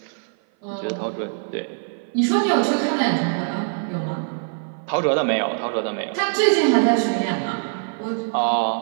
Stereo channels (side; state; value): left; silent; 56 dB below the other